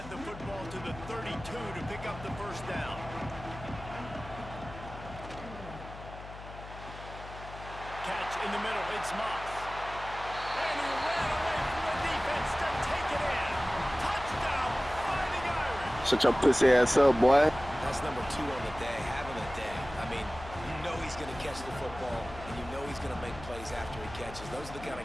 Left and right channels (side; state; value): left; noise; hum, 13 dB below the sound